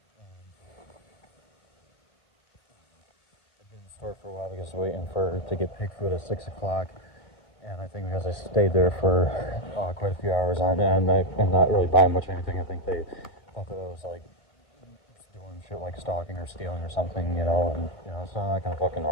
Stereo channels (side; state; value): right; late; 1.8 ms